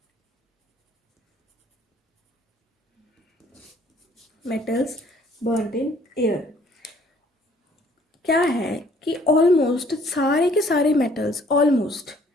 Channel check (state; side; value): normal; both; correlation 0.60